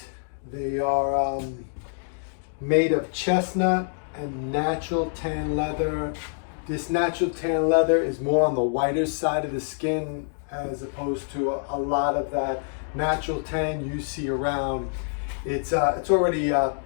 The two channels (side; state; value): right; silent; digital silence